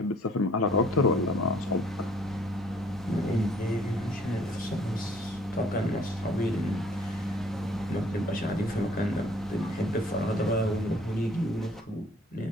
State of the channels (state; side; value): normal; both; correlation 0.58